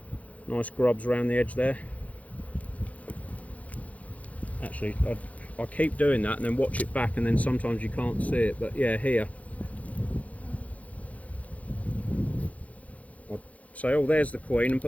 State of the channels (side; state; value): right; late; 0.068 ms